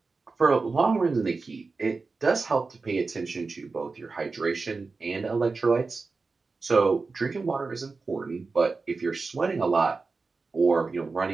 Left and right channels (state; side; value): quieter; left; 4.1 dB